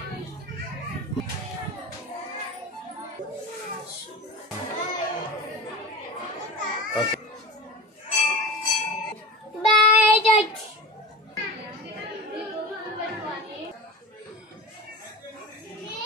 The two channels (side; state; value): both; normal; correlation 0.30